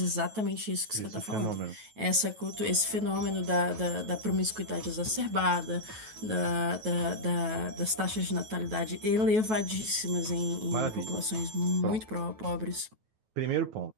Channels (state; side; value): late; left; 9.3 ms